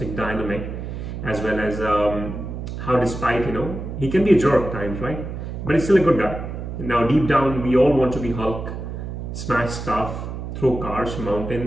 dynamic, as well as how, despite, he can be a jerk at times, right? But he's still a good guy. Now, deep down, we all want to be Hulk, smash stuff, throw cars,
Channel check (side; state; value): right; noise; hum, 7 dB below the sound